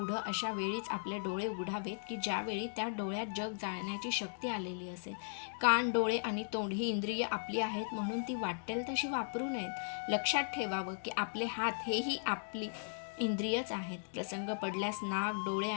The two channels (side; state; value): right; silent; digital silence